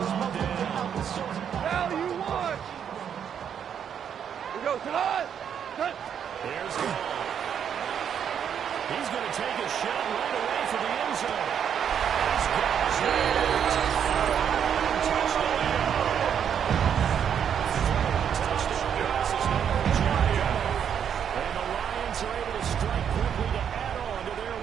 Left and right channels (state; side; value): quieter; left; 8.3 dB